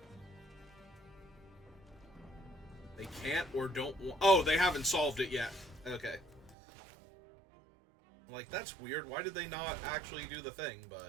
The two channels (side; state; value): left; drops out; at 6.6 s